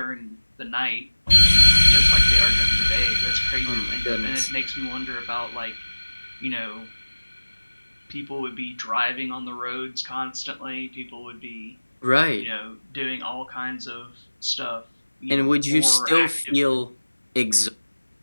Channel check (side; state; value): both; inverted; correlation -1.00